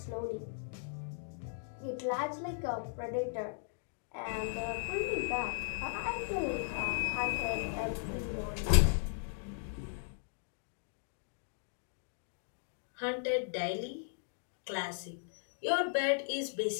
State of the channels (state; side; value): silent; right; digital silence